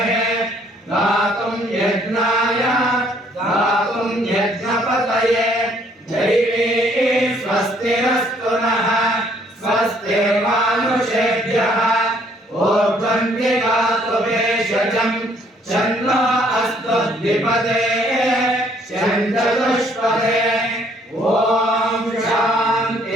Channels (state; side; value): normal; both; correlation 0.64